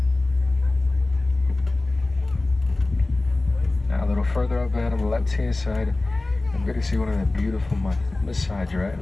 Now a little further up ahead on the left-hand side, I'm going to see one of the beautiful Maasai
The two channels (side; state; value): right; quieter; 3.0 dB